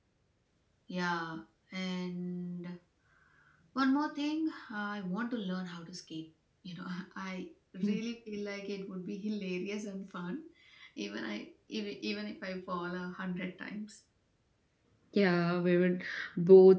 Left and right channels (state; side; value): identical; both; correlation 1.00